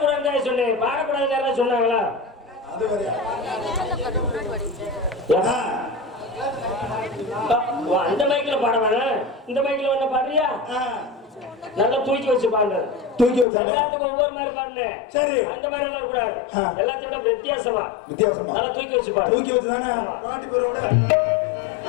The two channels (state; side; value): drops out; right; at 13.5 s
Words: சொன்னேன் பாடக்கூடாதுன்னு யாராவது சொன்னாங்களா அது வரையா அந்த மைக்ல பாட வேணாம் இந்த மைக்ல வேணா பாடுறியா நல்லா தூக்கி வச்சு பாடு தூக்கி வச்சானே எல்லாத்துக்கும் ஒவ்வொரு மாதிரி பாடுனே சரி அந்த மாதிரி எல்லாம் கூடாது எல்லாத்தையும் விட வித்தியாசமா நல்லா தூக்கி வச்சு பாடு தூக்கி வச்சு தானே பாட்டி பேரோட